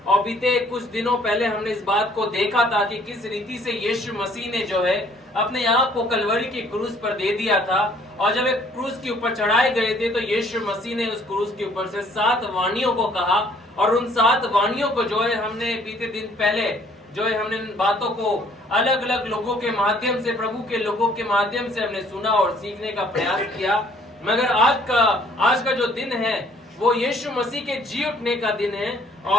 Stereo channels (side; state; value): both; normal; correlation 0.60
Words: और बीते कुछ दिनों पहले हमने इस बात को देखा था कि किस रीति से यीशु मसीह ने जो है अपने आप को कलवरी की क्रूस पर दे दिया था। और जब एक क्रूस के ऊपर चढ़ाए गए थे तो यीशु मसीह ने उस क्रूस के ऊपर से 7 वाणियों को कहा, और उन 7 वाणियों को जो है हमने बीते दिन पहले जो है हमने इन बातों को अलग अलग लोगों के माध्यम से, प्रभु के लोगों के माध्यम से हमने सुना और सीखने का प्रयास किया। मगर आज का जो दिन है वो यीशु मसीह के जी उठने का दिन है,